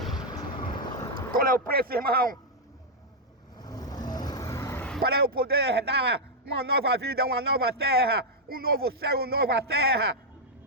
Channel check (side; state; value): both; normal; correlation -0.03